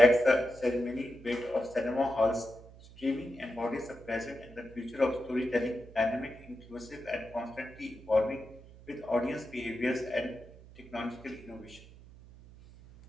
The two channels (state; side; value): noise; right; hum, 20 dB below the sound